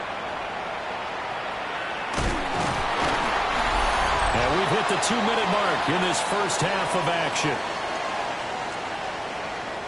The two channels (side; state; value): both; identical; correlation 1.00